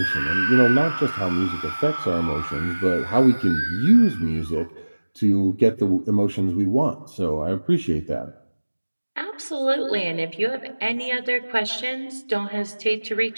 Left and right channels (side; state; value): both; inverted; correlation -1.00